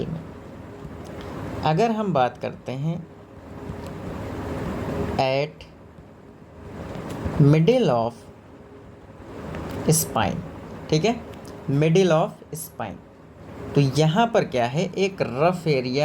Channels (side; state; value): both; identical; correlation 1.00